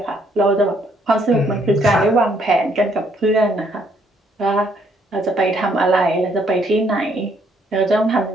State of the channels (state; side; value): normal; both; correlation 0.68